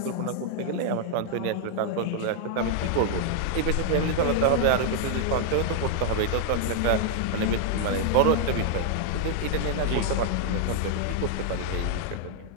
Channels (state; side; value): different; both; correlation -0.01